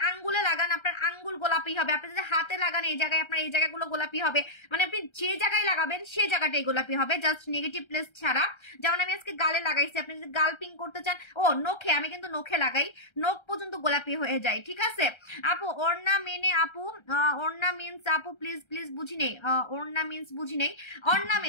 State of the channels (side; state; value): right; late; 1.3 ms